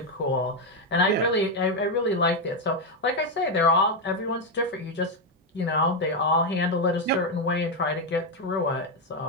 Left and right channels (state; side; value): normal; both; correlation 0.05